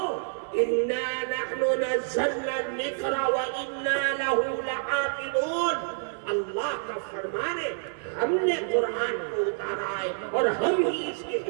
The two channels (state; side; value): silent; left; 59 dB below the other